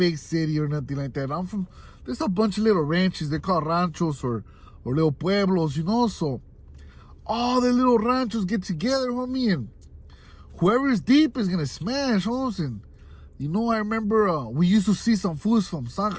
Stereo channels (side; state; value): both; identical; correlation 1.00